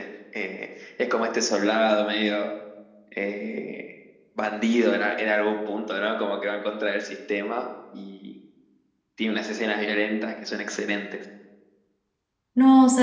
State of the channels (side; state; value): both; identical; correlation 1.00